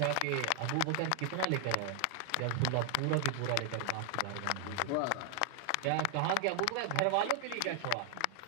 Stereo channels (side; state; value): both; different; correlation 0.00